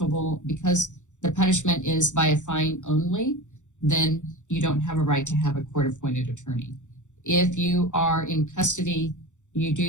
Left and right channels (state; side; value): late; right; 0.85 ms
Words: because the punishment is by a fine only, then you don't have a right to have a court-appointed attorney. If you are in custody, you